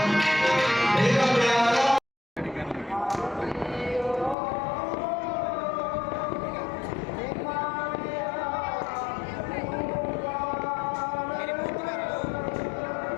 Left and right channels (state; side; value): drops out; right; at 4.4 s